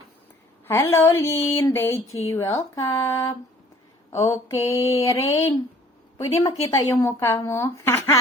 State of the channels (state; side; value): normal; both; correlation 0.54